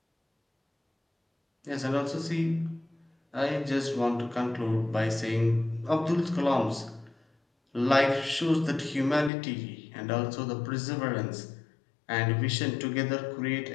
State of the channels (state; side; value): drops out; right; at 9.3 s